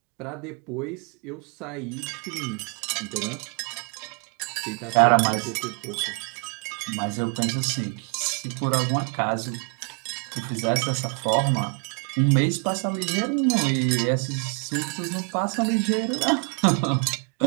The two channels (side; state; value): left; quieter; 37.0 dB